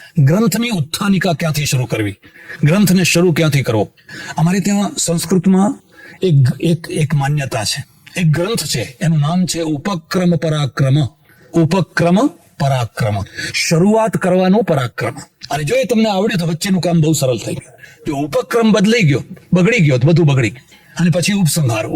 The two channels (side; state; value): both; identical; correlation 1.00